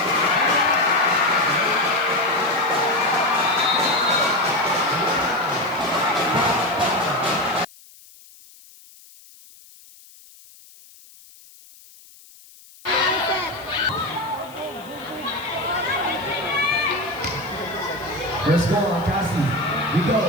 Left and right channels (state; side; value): noise; left; hiss, 23 dB below the sound